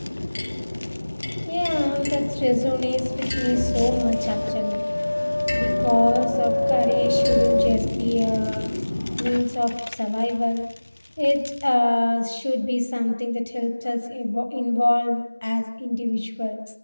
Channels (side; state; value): both; inverted; correlation -1.00